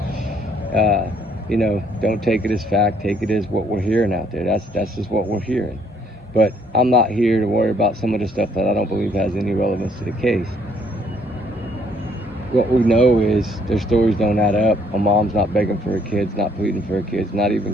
You know, don't take it as fact, take it as what we're hearing out there. That's just what we're hearing. But I'm not here to worry about some of the stuff that I don't believe has any relevance to the case. What we know is their stories don't add up. A mom's not begging for her kids, not pleading for her kids, not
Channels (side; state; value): both; normal; correlation 0.65